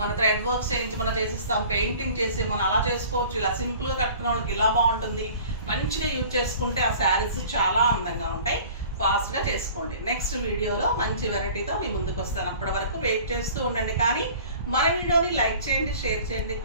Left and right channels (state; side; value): inverted; both; correlation -0.47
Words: థ్రెడ్ వర్క్స్ చేయించి మనం చేసిస్తాం, పెయింటింగ్ చేసి మనం అలా చేసుకోవచ్చు. ఇలా సింపుల్గా కట్టుకునే వాళ్ళకి ఇలా బాగుంటుంది. మంచిగా యూజ్ చేసుకుంటే ఆ శారీస్ చాలా అందంగా ఉంటాయి. ఫాస్ట్గా చేసుకోండి. నెక్స్ట్ వీడియోలో మంచి వెరైటీతో మీ ముందుకు వస్తాను. అప్పటి వరకు వెయిట్ చేస్తూ ఉండండి. కానీ మన వీడియోని లైక్ చేయండి, షేర్ చేయండి,